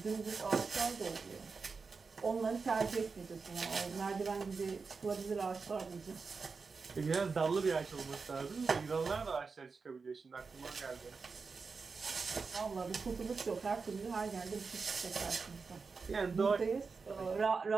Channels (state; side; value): quieter; left; 4.7 dB